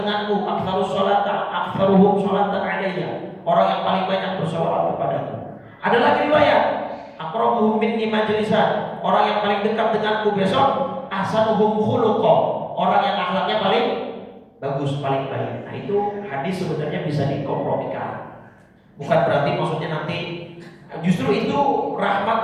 denganku, aktsaruhum sholatan alayya, orang yang paling banyak bersolawat kepadaku. Ada lagi riwayat, aqrabu minni majlisan, orang yang paling dekat denganku besok, ahsanuhum khuluqa, orang yang akhlaknya paling bagus, paling baik. Nah, itu hadis sebenarnya bisa dikompromikan. Bukan berarti maksudnya nanti, justru itu rahmat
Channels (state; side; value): identical; both; correlation 1.00